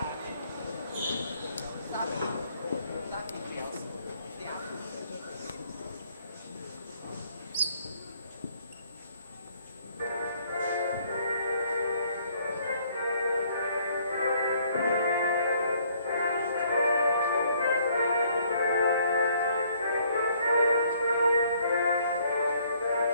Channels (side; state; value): both; inverted; correlation -0.64